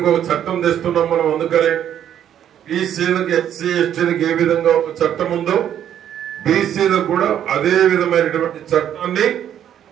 ఒక చట్టం తెస్తున్నాం మనం, అందుకనే బీసీలకు ఎస్సీ ఎస్టీలకు ఏ విధంగా ఒక చట్టం ఉందో బీసీలకు కూడా అదే విధమైనటువంటి చట్టాన్ని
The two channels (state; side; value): quieter; left; 10.1 dB